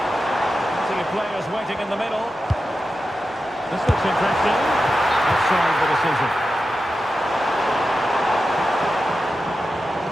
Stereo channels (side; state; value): both; normal; correlation 0.91